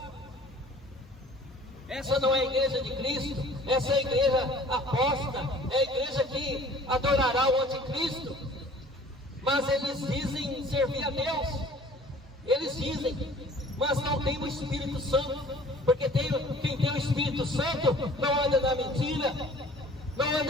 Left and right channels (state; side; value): normal; both; correlation 0.50